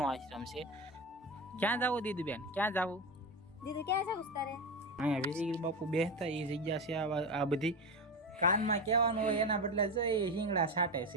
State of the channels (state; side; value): normal; both; correlation 0.19